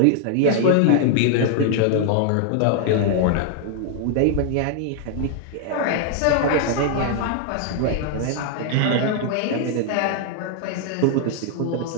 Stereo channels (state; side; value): different; both; correlation 0.00